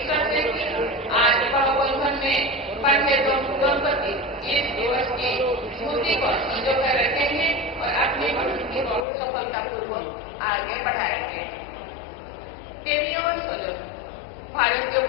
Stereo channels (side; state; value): right; drops out; at 9.1 s